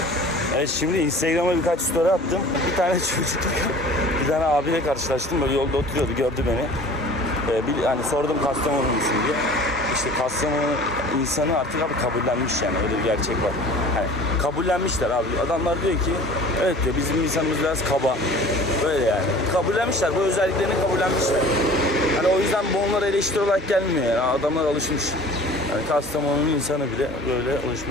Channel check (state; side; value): normal; both; correlation 0.45